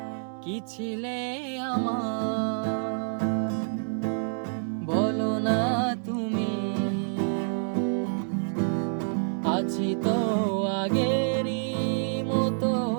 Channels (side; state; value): left; silent; 60 dB below the other